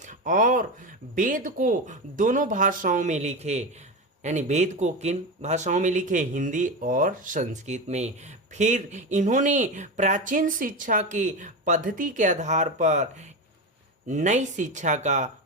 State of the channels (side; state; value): both; normal; correlation 0.20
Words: और वेद को दोनों भाषाओं में लिखे, यानी वेद को किन भाषाओं में लिखे? हिंदी और संस्कृत में। फिर इन्होंने प्राचीन शिक्षा की पद्धति के आधार पर नई शिक्षा का